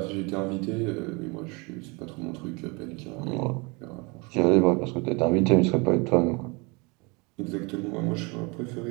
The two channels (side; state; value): left; quieter; 28.8 dB